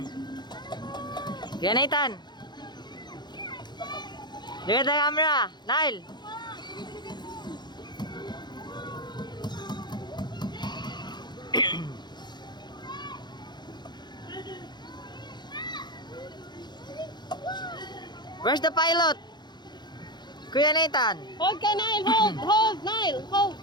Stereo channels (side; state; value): right; late; 0.21 ms